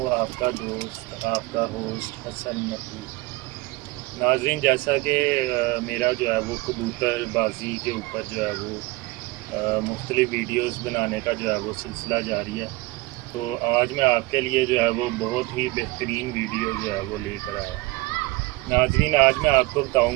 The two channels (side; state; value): left; quieter; 21.6 dB